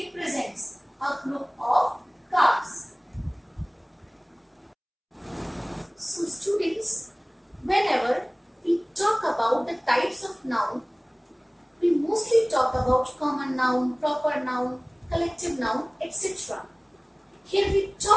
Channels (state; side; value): identical; both; correlation 1.00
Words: a group of cars. So students, whenever we talk about the types of noun, we mostly talk about common noun, proper noun, collective noun, etc. Here we